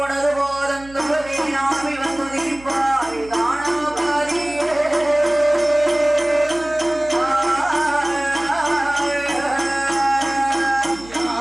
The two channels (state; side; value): noise; right; hum, 20 dB below the sound